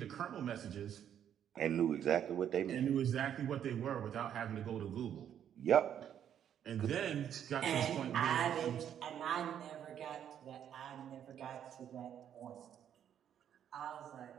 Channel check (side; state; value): left; quieter; 9.5 dB